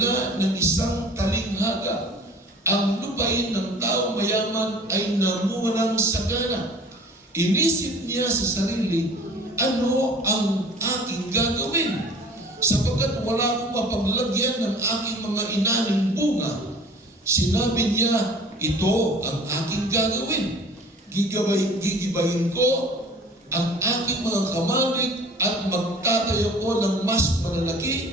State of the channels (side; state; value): both; normal; correlation 0.47